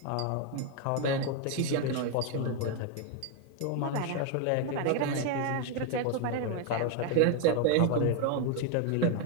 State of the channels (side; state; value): both; different; correlation 0.01